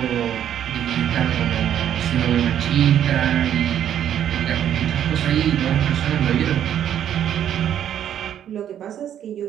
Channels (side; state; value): left; quieter; 10.1 dB